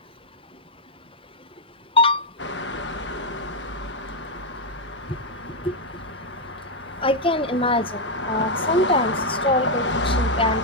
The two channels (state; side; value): normal; both; correlation 0.00